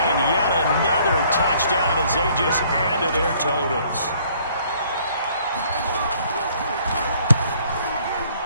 Yet another touchdown as they just add to their totals.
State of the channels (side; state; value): both; inverted; correlation -0.61